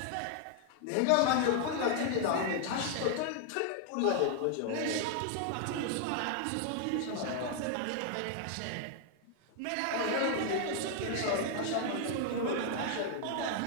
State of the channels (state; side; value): different; both; correlation 0.00